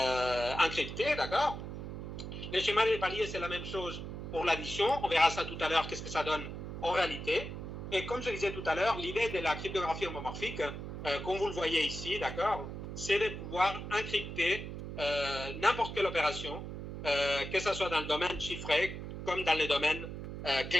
encrypté, d'accord? Les schémas des paliers, c'est la même chose pour l'addition. On verra ça tout à l'heure, qu'est-ce que ça donne en réalité. Et comme je disais tout à l'heure, l'idée de la cryptographie homomorphique, comme vous le voyez ici, d'accord, c'est de pouvoir encrypter n'importe quelle opération, que ce soit dans le domaine chiffré comme dans les domaines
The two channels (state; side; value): noise; right; hum, 8 dB below the sound